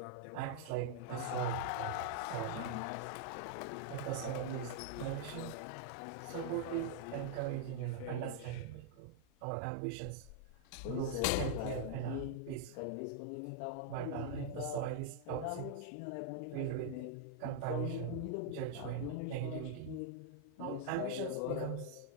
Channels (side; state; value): both; different; correlation -0.01